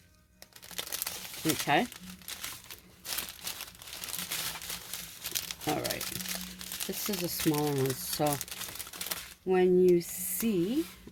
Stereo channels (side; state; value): both; identical; correlation 1.00